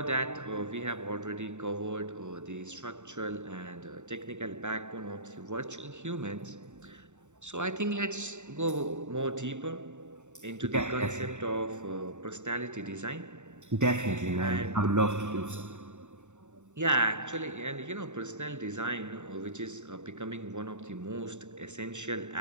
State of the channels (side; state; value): left; late; 0.84 ms